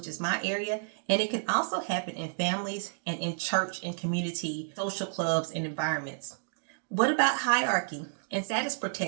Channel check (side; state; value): left; silent; digital silence